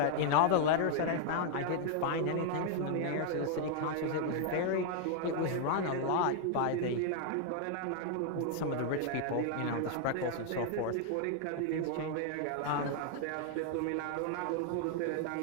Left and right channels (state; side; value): different; both; correlation 0.00